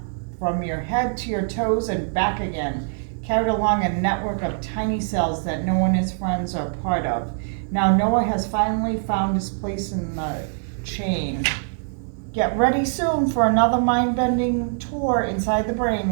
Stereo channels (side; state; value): left; silent; digital silence